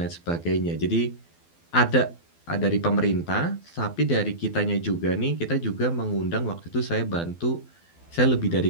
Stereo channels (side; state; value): right; late; 12 ms